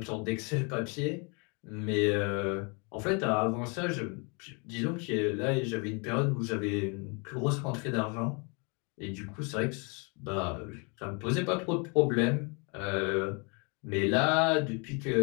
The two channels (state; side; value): quieter; right; 33.2 dB